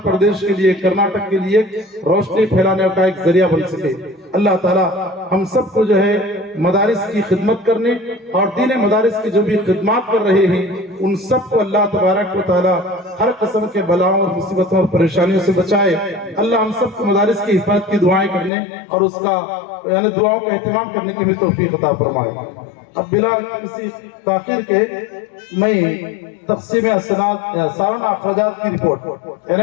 پردیش کے لیے، کرناٹک کے لیے روشنی پھیلانے کا ایک ذریعہ بن سکے۔ اللہ تعالیٰ ہم سب کو جو ہے مدارس کی خدمت کرنے اور دین مدارس کی جو بھی خدمات کر رہے ہیں ان سب کو اللہ تبارک و تعالیٰ ہر قسم کے بلاؤں اور مصیبتوں اور پریشانیوں سے بچائے۔ اللہ ہم سب کو مدارس کی حفاظت کی دعائیں کرنے اور اس کا یعنی دعاؤں کا اہتمام کرنے کی بھی توفیق عطا فرمائے۔ اب بلا کسی تاخیر کے میں تقسیم اسناد سالانہ اخراجات کی رپورٹ، یعنی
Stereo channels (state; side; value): drops out; right; at 18.5 s